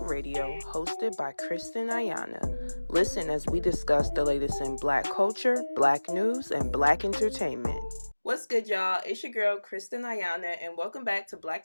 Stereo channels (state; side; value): inverted; both; correlation -1.00